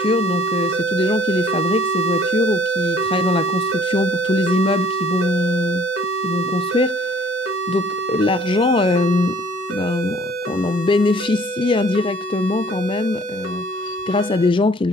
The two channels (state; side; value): normal; both; correlation 0.56